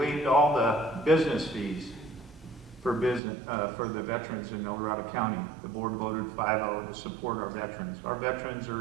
all the business fees for the veterans in El Dorado County. The board voted 5-0 to support our veterans. Our veterans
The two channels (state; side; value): drops out; left; at 3.2 s